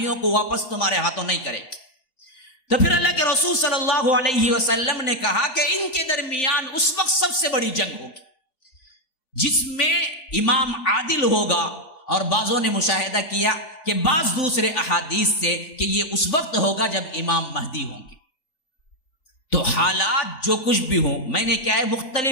کو واپس تمہارے ہاتھوں نہیں کریں گے. تو پھر اللہ کے رسول صلی اللہ علیہ وسلم نے کہا کہ ان کے درمیان اس وقت سب سے بڑی جنگ ہوگی، جس میں امام عادل ہوگا. اور بعضوں نے مشاہدہ کیا کہ بعض دوسرے احادیث سے کہ یہ اس وقت ہوگا جب امام مہدی ہوں گے. تو حالات جو کچھ بھی ہوں، میں نے کیا ہے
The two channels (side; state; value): right; late; 3.8 ms